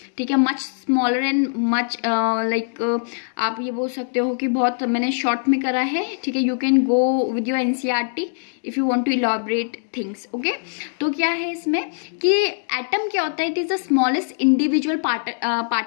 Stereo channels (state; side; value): silent; right; digital silence